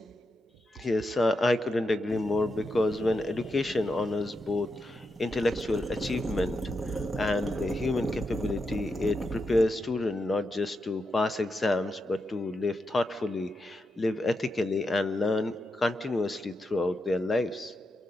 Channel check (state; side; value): normal; both; correlation 0.86